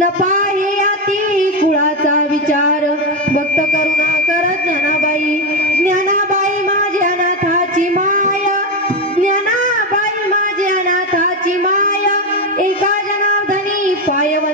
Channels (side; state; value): both; normal; correlation 0.12